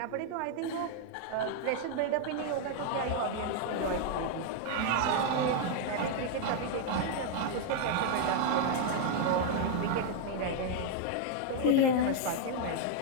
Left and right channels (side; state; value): both; different; correlation 0.00